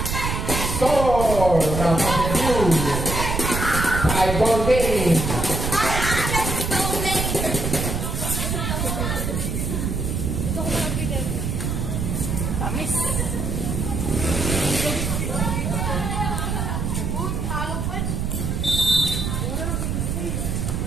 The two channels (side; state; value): right; noise; rumble, 1 dB below the sound